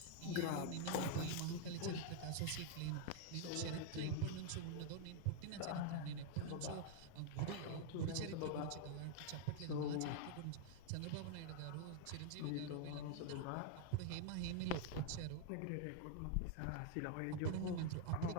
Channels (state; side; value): different; both; correlation 0.00